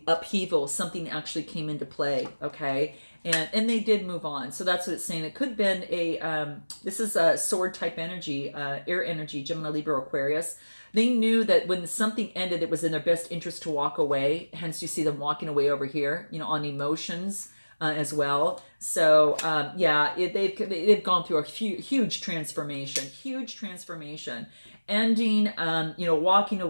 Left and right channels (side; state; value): both; inverted; correlation -1.00